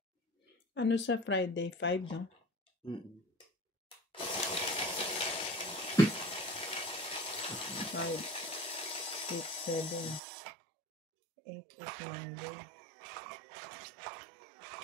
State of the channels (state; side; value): drops out; left; at 10.2 s